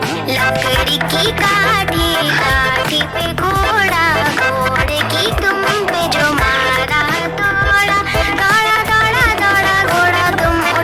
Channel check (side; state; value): both; identical; correlation 1.00